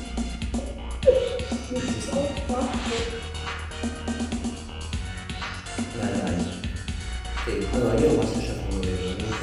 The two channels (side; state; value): both; identical; correlation 1.00